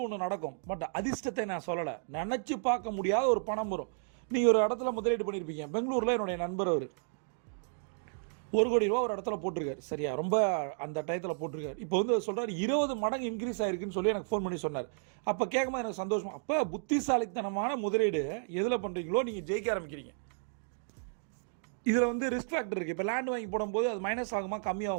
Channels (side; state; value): left; silent; digital silence